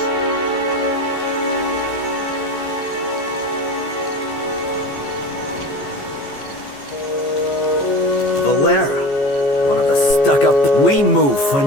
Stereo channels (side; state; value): right; late; 14 ms